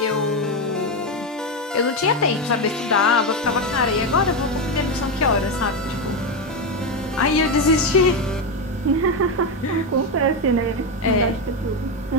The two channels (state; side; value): normal; both; correlation 0.10